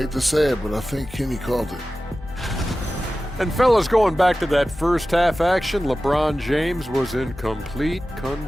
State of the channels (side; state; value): both; normal; correlation 0.95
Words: to say it, but I think Kenny called it. And fellas, going back to that first half action, LeBron James was in complete